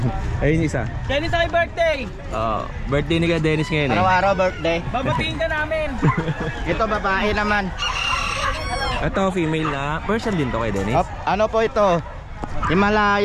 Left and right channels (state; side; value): identical; both; correlation 1.00